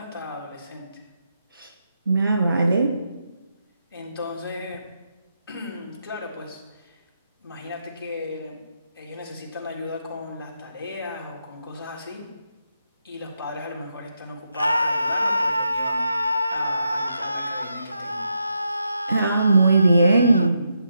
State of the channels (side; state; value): both; inverted; correlation -0.83